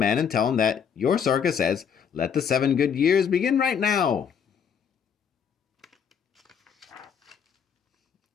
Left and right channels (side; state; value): right; quieter; 7.3 dB